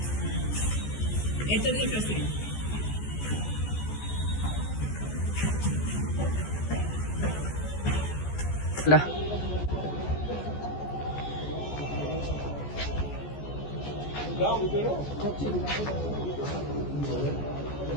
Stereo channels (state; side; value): late; right; 14 ms